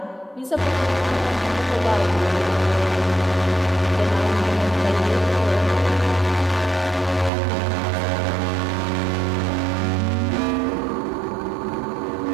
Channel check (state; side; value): drops out; left; at 7.3 s